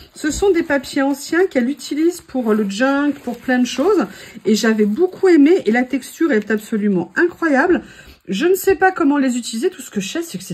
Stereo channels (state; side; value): identical; both; correlation 1.00